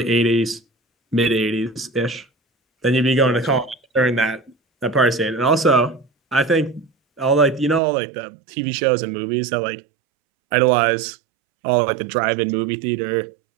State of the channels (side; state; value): left; drops out; at 7.8 s